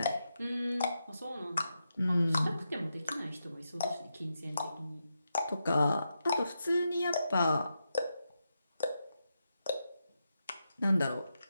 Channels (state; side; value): inverted; both; correlation -0.86